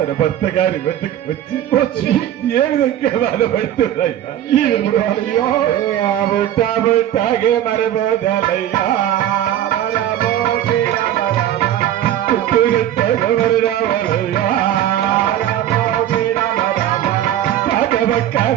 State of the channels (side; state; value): left; quieter; 11.7 dB